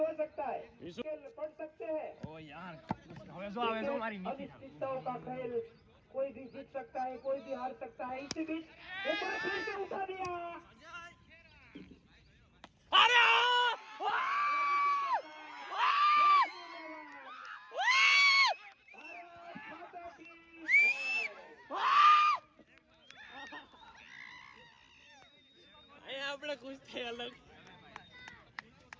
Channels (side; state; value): both; identical; correlation 1.00